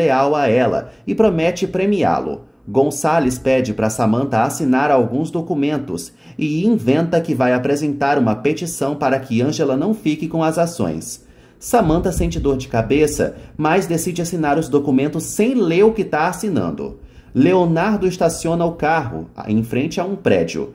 a ela e promete premiá-lo. Gonçalves pede para Samantha assinar alguns documentos e inventa que vai apresentar uma petição para que Ângela não fique com as ações. Samantha sente dor de cabeça, mas decide assinar os documentos sem ler o que está assinando. Leonardo estaciona o carro em frente a um prédio.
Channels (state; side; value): identical; both; correlation 1.00